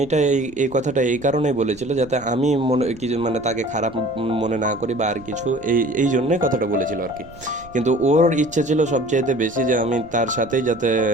এই কথাটা এই কারণেই বলেছিল যাতে আমি মনে কিছু মানে তাকে খারাপ মনে না করি বা আর কিছু, এই জন্যই কথাটা বলেছিল আর কি। কিন্তু ওর ইচ্ছে ছিল সবচাইতে বেশি যে আমি তার সাথেই যাতে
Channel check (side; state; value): right; noise; rumble, 21 dB below the sound